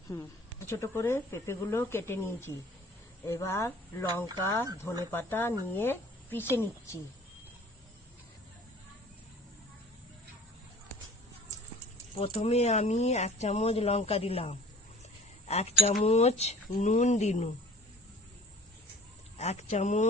ছোট করে পেঁপেগুলো কেটে নিয়েছি। এবার লঙ্কা ধনেপাতা নিয়ে পিষে নিচ্ছি। প্রথমে আমি 1 চামচ লঙ্কা দিলাম, 1 চামচ নুন দিলাম, 1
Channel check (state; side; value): normal; both; correlation 0.47